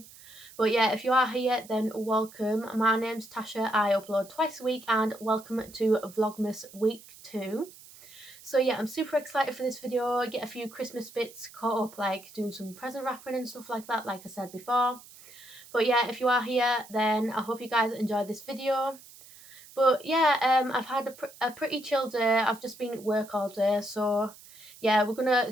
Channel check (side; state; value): right; noise; hiss, 20 dB below the sound